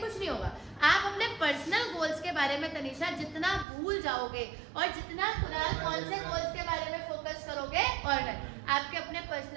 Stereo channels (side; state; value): left; drops out; at 3.7 s